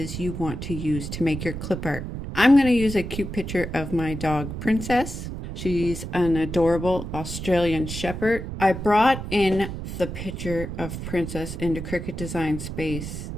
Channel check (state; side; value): noise; right; rumble, 7 dB below the sound